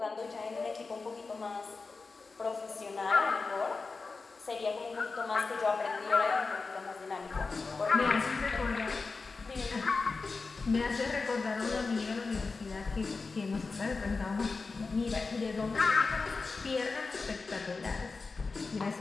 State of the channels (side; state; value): right; quieter; 4.2 dB